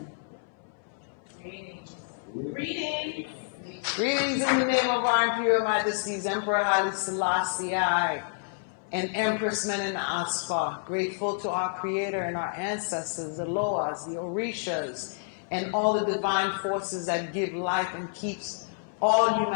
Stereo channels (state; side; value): silent; right; 59 dB below the other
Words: Greetings. Greetings. Greetings in the name of our Imperial Majesties, Emperor Haile Selassie I and Empress Menen Asfa. Grateful to our Creator and our ancestors, the Loas, the Orishas, and all the divine forces that give life and keeps all